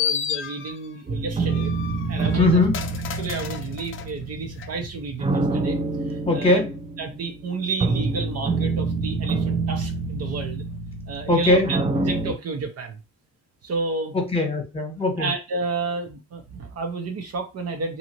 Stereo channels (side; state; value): both; normal; correlation 0.30